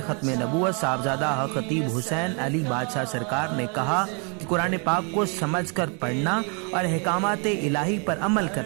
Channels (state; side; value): quieter; left; 36.5 dB